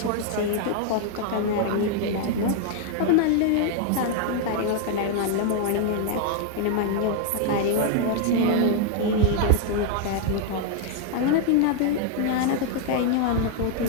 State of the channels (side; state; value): both; different; correlation 0.00